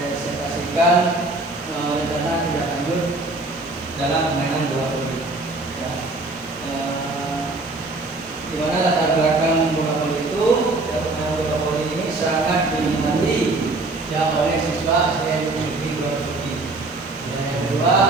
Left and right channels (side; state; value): left; quieter; 3.1 dB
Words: rencana tindak lanjut dalam permainan bola voli. Ya. Di mana latar belakang bola voli itu, ya, permainan bola voli ini sangat diminati ya oleh siswa yang memiliki bola voli. Dan yang kedua,